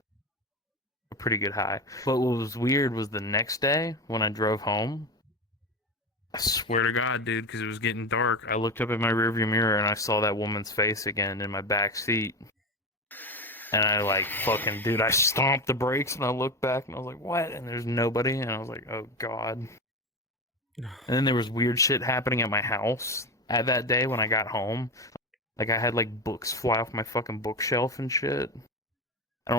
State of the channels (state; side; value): normal; both; correlation 0.21